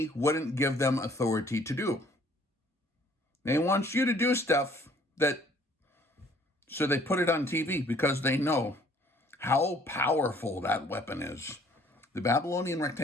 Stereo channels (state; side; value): normal; both; correlation 0.59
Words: wouldn't give them authority to do. They want you to do stuff so they put it on TV because they know how powerful that weapon is. The Babylonian